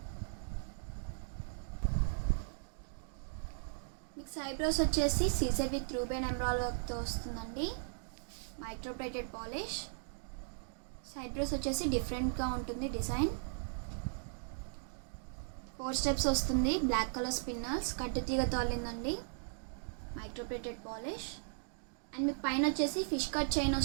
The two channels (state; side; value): silent; left; digital silence